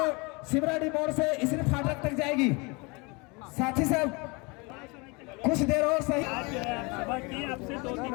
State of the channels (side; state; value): right; quieter; 28.2 dB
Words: शिवराड़ी मोड़ से इसरी फाटक तक जाएगी। साथी साहब कुछ देर और सही सभा की आपसे 2